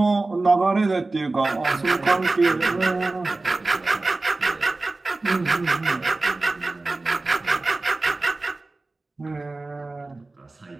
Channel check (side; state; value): left; quieter; 3.2 dB